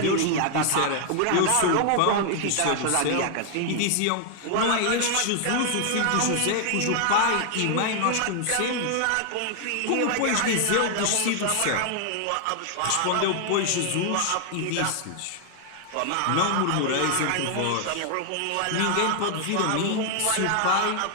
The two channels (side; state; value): both; different; correlation 0.00